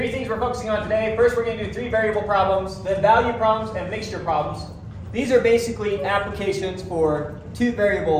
things we're focusing on today. First, we're going to do 3 variable problems, then value problems and mixture problems. These are basically applications for 2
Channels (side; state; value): both; identical; correlation 1.00